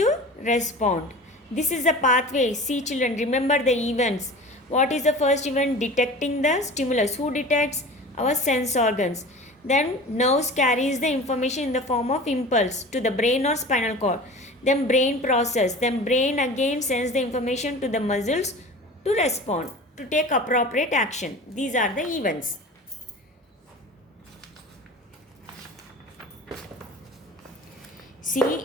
respond. This is the pathway. See children, remember the events. What is the first event? Detecting the stimulus. Who detects? Our sense organs. Then nerves carries the information in the form of impulse to the brain or spinal cord. Then brain process. Then brain again sends the information to the muscles to respond, to take appropriate action. These are the events. See,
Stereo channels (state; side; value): normal; both; correlation 0.37